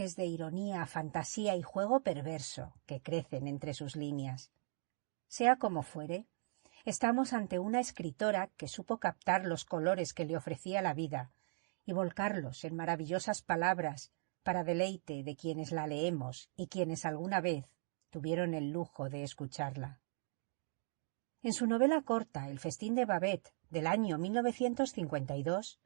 de ironía, fantasía y juego perverso que crecen entre sus líneas. Sea como fuere, estamos ante una escritora que supo captar los colores que le ofrecía la vida y volcarlos en maravillosas palabras para deleite de quienes la leemos y quienes alguna vez tuvieron el lujo de escucharla. En su novela corta El festín de Babette, del año 1952,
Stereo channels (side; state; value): left; silent; digital silence